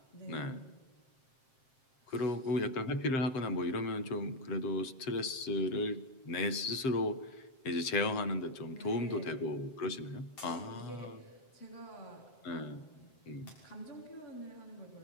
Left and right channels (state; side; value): late; right; 7.6 ms